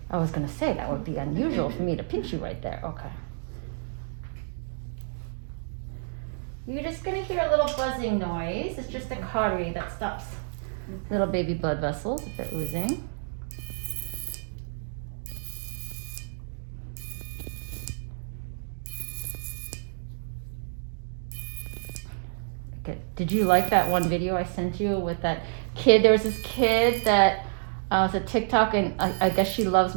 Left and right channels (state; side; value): silent; left; digital silence